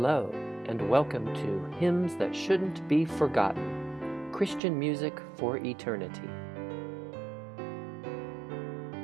and welcome to Hymns That Shouldn't Be Forgotten, Christian Music for Eternity.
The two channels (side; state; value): left; drops out; at 4.6 s